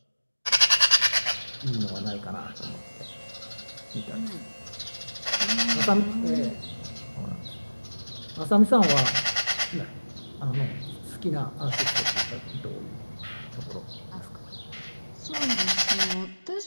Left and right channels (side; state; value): both; inverted; correlation -1.00